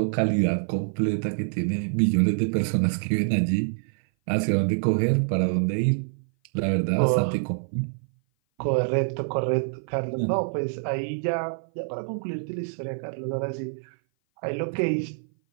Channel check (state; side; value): silent; left; 57 dB below the other